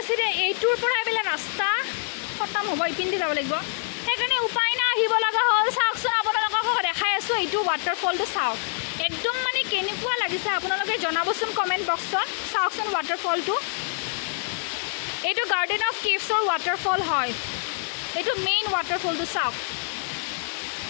চিধে এইটোৰ পৰা এইবিলাক ৰাস্তা খতম হ'ব ইপিনে যাব লাগিব সেইকাৰণে উপায় নাই আহিব লগা হ'ল চাওকচোন আপোনালোকক দেখাই আছোঁ এইটো ৱাটাৰফলটো চাওক একদম মানে কেনেকুৱা লাগিছে আপোনালোকে জনাবচোন কমেণ্ট বক্সত চাওকচোন ৱাটাৰফলটো এইটো গাৰ্ডেন অফ কেভছৰ ৱাটাৰফল হয় এইটো মেইন ৱাটাৰফলটো চাওক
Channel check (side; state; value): right; silent; digital silence